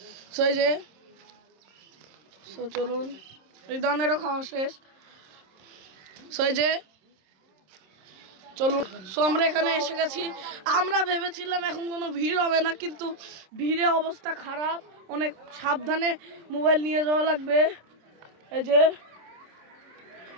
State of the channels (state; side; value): late; left; 26 ms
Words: সো এই যে চলুন, এই ধরনেরও খাওয়া শেষ। সো এই যে চলুন। সো আমরা এখানে এসে গেছি। আমরা ভেবেছিলাম এখন কোনো ভিড় হবে না, কিন্তু ভিড়ে অবস্থা খারাপ, অনেক সাবধানে মোবাইল নিয়ে যাওয়া লাগবে। এই যে